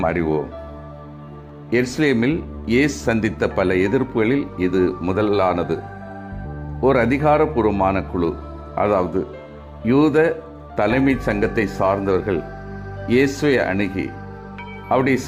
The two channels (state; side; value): identical; both; correlation 1.00